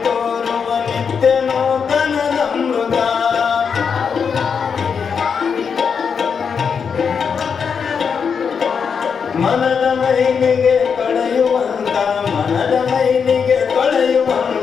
ತೋರುವ ನಿತ್ಯ ನೂತನದಮೃತ ಮನದ ಮೈಲಿಗೆ ಕಳೆಯುವಂತ ಮನದ ಮೈಲಿಗೆ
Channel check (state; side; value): quieter; right; 6.4 dB